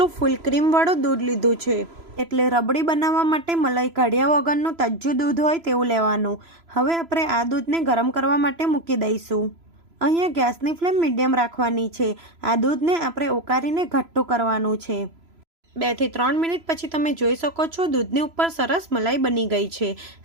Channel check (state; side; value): late; left; 3.0 ms